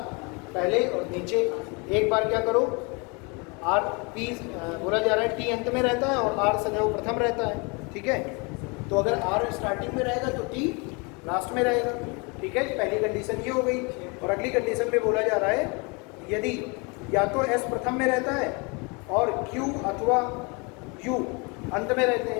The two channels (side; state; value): right; quieter; 30.6 dB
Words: पहले और नीचे। एक बार क्या करो, आर पी बोला जा रहा है टी अंत में रहता है और आर सदैव प्रथम रहता है, ठीक है। तो अगर आर स्टार्टिंग में रहेगा तो टी लास्ट में रहेगा, ठीक है। पहली कंडीशन ये हो गई। और अगली कंडीशन में बोला जा रहा है यदि या तो एस प्रथम में रहता है और क्यू अथवा यू अंत में रहते